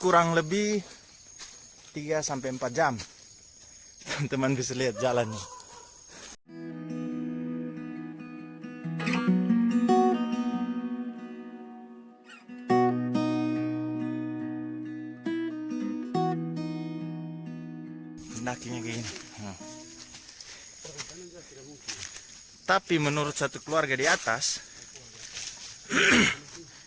lebih 3-4 jam. Teman-teman bisa lihat jalannya. Pendakinya kayak gini. Tapi menurut satu keluarga di atas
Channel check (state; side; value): identical; both; correlation 1.00